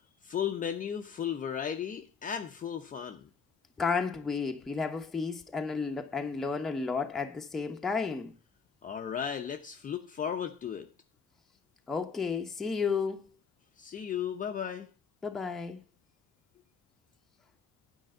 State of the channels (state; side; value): quieter; right; 5.7 dB